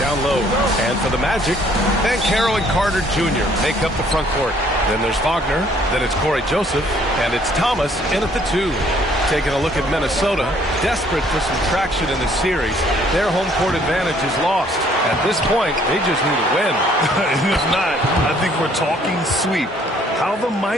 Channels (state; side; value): normal; both; correlation 0.62